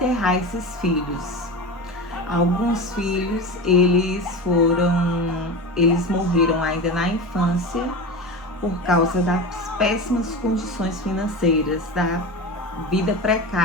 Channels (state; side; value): normal; both; correlation 0.26